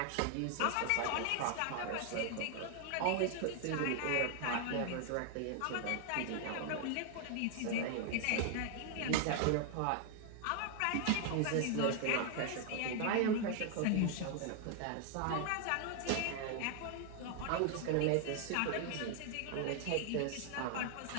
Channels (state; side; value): different; both; correlation 0.00